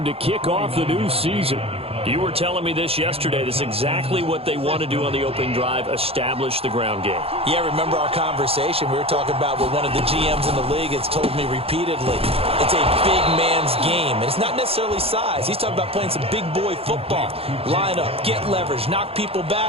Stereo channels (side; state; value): left; late; 0.28 ms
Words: to kick off the new season. You were telling me this yesterday. This is exactly what they want to do on the opening drive, establish the ground game. Yeah, remember our conversation we were talking about what one of the GMs in the league has told me repeatedly. It's a big man's game, and it's not necessarily size. He's talking about playing some big boy football. Line up, get leverage, knock people